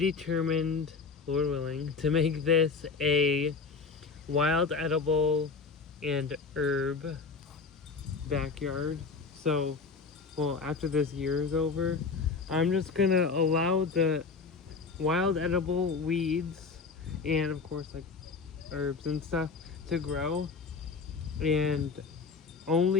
Lord willing, to make this a wild edible and herb backyard. So, well, after this year is over, I'm just gonna allow the wild edible weeds and of course like herbs and stuff to grow, and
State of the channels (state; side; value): quieter; right; 4.8 dB